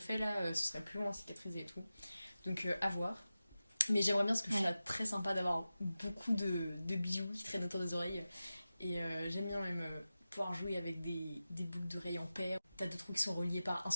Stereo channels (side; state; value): both; inverted; correlation -0.94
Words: là, ce serait plus long à cicatriser et tout. Donc, à voir. Mais j'aimerais bien parce que je Ouais. trouve ça très sympa d'avoir beaucoup de bijoux qui traînent autour des oreilles. Et j'aime bien même pouvoir jouer avec des boucles d'oreilles en paire. T'as deux trous qui sont reliés par un